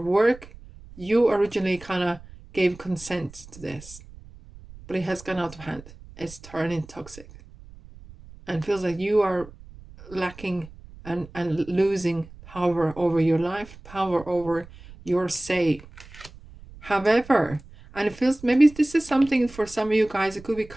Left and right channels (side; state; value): right; noise; rumble, 19 dB below the sound